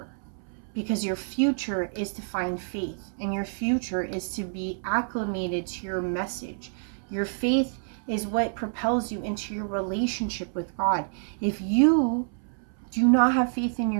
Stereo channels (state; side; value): silent; left; 59 dB below the other